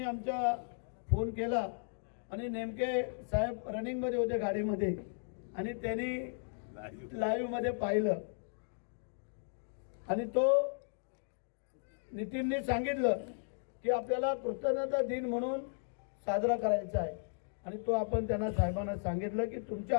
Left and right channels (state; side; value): silent; right; digital silence